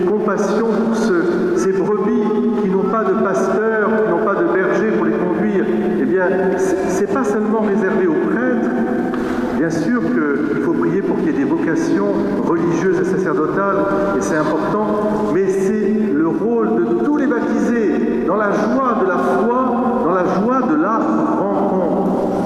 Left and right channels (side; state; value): both; identical; correlation 1.00